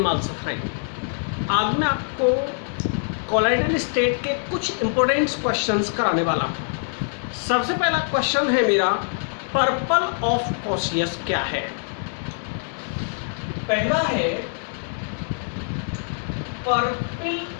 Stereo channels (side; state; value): right; silent; 63 dB below the other